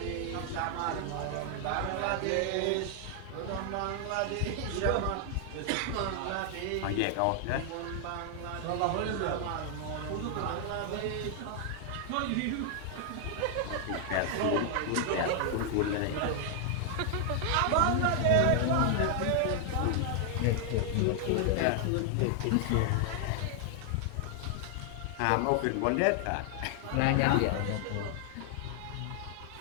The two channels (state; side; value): different; both; correlation 0.00